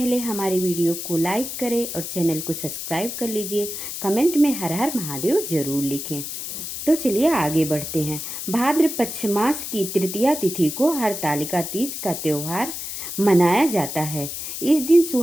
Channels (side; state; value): left; noise; hiss, 7 dB below the sound